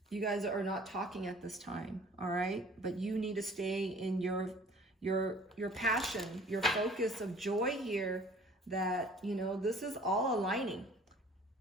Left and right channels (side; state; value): both; normal; correlation 0.50